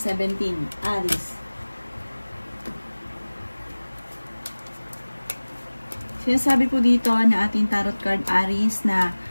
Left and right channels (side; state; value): both; inverted; correlation -1.00